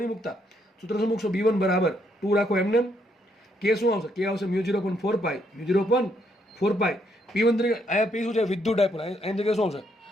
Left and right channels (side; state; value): both; normal; correlation 0.73